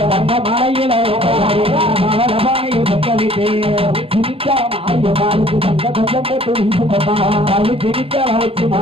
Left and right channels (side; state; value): left; late; 0.27 ms